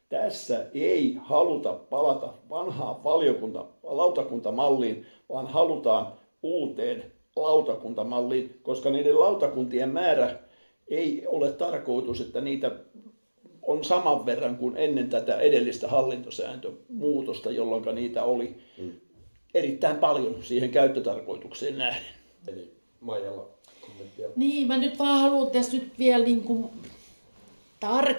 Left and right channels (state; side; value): inverted; both; correlation -1.00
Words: tässä ei haluta palata vanhaan lautakuntamalliin, vaan halutaan uuteen lautakuntamalliin, koska niiden lautakuntien määrä ei ole tarkoitus, että niitä on saman verran kuin ennen tätä edellistä hallintosääntömuutosta, jolloin niitä oli erittäin paljon siihen käyttötarkoitukseen nähden. Eli Maijalla kommenttia. Niin, mä nyt vaan haluan tässä nyt vielä niin kuin